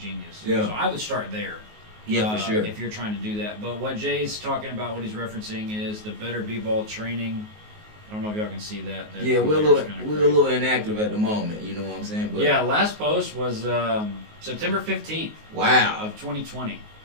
Yeah. So I would start there. Yeah, for sure. If you're trying to do that. But what Jay's talking about, what he's referencing is the Better B-Ball training. I don't know if y'all can see that. Yeah, we're a little inactive at the moment. You know what I'm saying? But yeah, last post was September 15th. Wow. Of 2020.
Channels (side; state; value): left; late; 19 ms